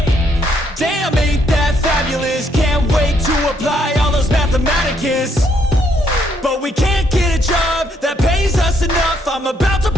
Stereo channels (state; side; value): normal; both; correlation 0.72